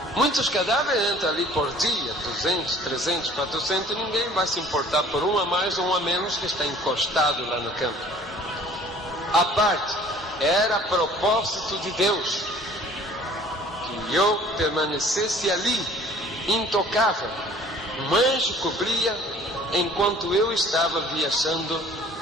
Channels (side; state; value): both; normal; correlation 0.51